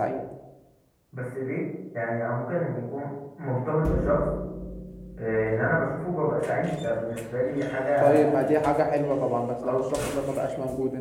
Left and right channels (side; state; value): both; identical; correlation 1.00